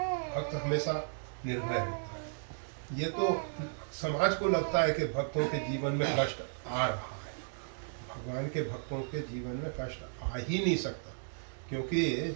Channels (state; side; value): silent; left; digital silence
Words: भक्त हमेशा निर्भय होता है। ये तो समाज को लगता है कि भक्तों के जीवन में कष्ट आ रहा है, भगवान के भक्तों के जीवन में कष्ट आ ही नहीं सकता, क्योंकि